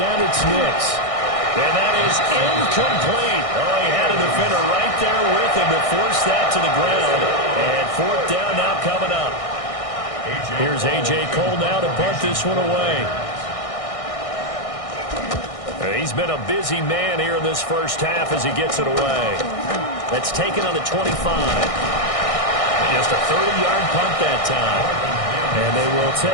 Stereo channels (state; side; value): late; right; 1.6 ms